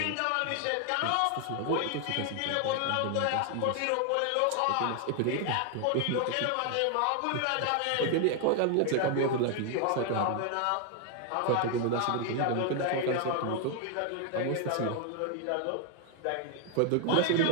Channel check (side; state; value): both; different; correlation 0.00